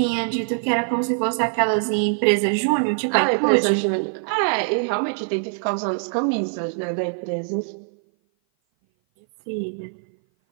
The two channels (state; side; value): silent; left; 57 dB below the other